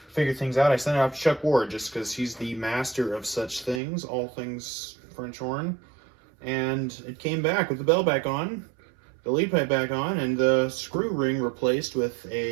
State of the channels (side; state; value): left; drops out; at 3.8 s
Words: figure things out, I sent it out to Chuck Ward just because he's the master of such things, all things French horn, and it came back with the bell back on, the lead pipe back on, and the screw ring replaced with